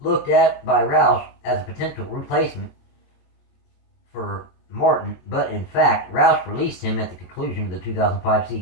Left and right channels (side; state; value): right; late; 22 ms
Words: at by Roush as a potential replacement for Martin, but in fact, Roush released him at the conclusion of the 2005